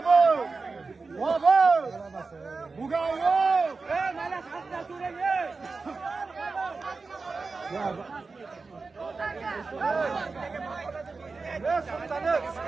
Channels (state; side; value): quieter; left; 4.1 dB